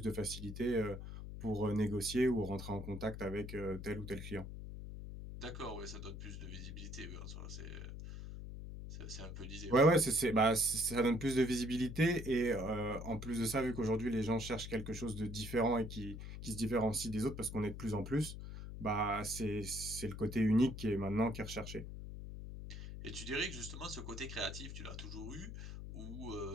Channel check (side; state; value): left; noise; hum, 9 dB below the sound